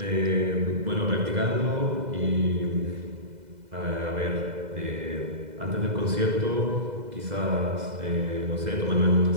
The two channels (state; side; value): late; left; 2.0 ms